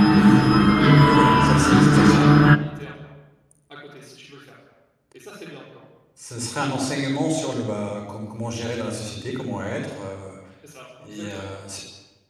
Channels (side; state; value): both; identical; correlation 1.00